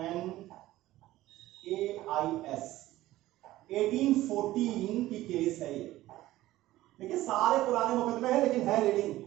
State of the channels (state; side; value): quieter; left; 16.0 dB